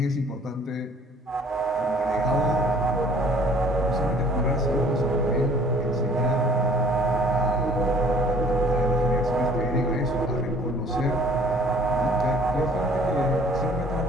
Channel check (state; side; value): normal; both; correlation 0.55